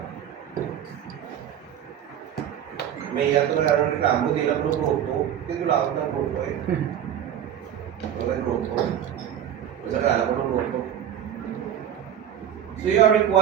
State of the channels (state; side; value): quieter; left; 9.9 dB